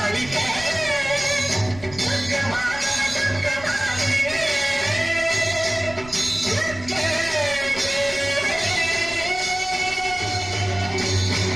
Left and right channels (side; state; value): right; noise; rumble, 16 dB below the sound